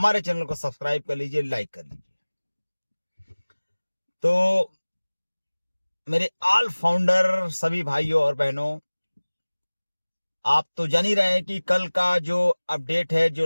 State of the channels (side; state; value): both; inverted; correlation -1.00